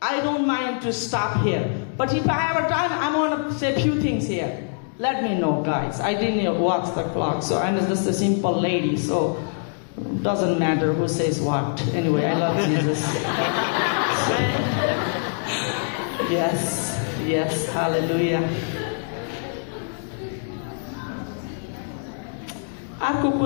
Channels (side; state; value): right; silent; digital silence